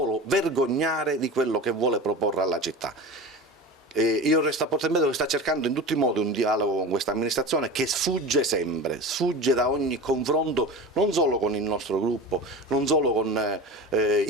vergognare di quello che vuole proporre alla città. Io resto a Porto Empedocle, sta cercando in tutti i modi un dialogo con questa amministrazione che sfugge sempre, sfugge da ogni confronto, non solo con il nostro gruppo, non solo con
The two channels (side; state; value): both; normal; correlation 0.32